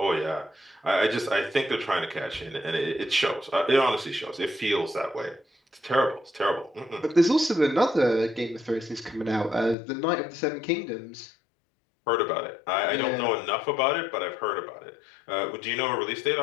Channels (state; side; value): drops out; right; at 9.8 s